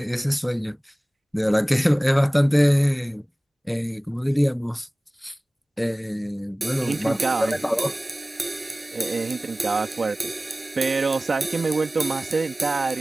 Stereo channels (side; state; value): both; normal; correlation 0.98